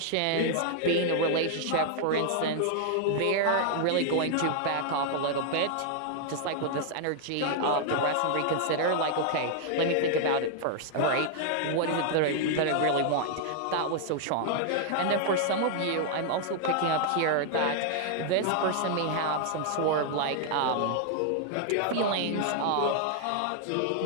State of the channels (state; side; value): different; both; correlation 0.00